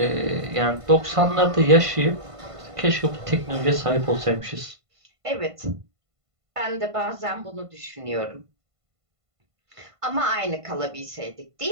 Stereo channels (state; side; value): late; left; 1.5 ms